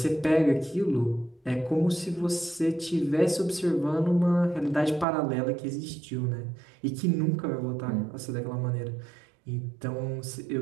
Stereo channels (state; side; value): drops out; left; at 5.1 s